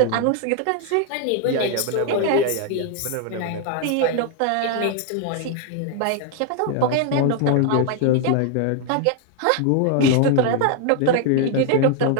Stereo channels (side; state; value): both; different; correlation 0.00